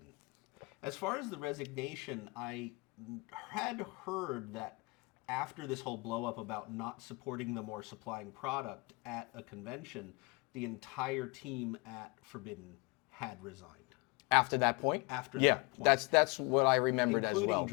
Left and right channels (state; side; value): quieter; right; 28.2 dB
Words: As far as the resignation, I had heard that after this whole blow up about not supporting them or supplying product at a convention, the entire team at Forbidden had resigned. After that point? After yeah, that point. that's what I remembered as well. Including